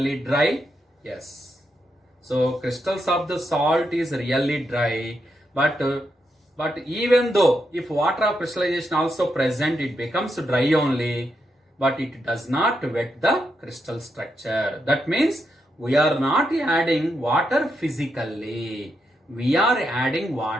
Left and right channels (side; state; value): both; normal; correlation 0.82